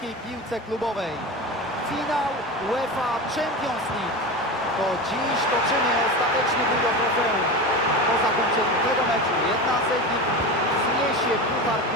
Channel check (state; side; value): normal; both; correlation 0.25